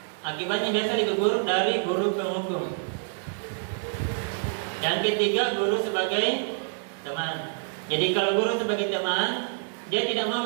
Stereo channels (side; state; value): left; silent; digital silence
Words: akibatnya biasa lebih buruk dari guru penghukum. Yang ketiga, guru sebagai teman. Jadi kalau guru sebagai teman, dia tidak mau